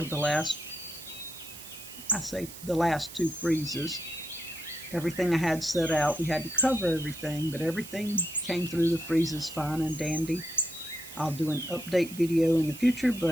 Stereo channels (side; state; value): right; noise; hiss, 14 dB below the sound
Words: the last two freezes. Everything I had set out, we had to cover everything, but everything came through the freezes fine and dandy. I'll do an update video in the future,